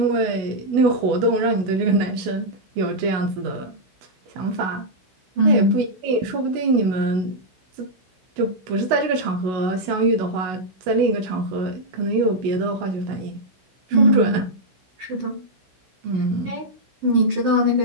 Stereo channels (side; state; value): left; late; 16 ms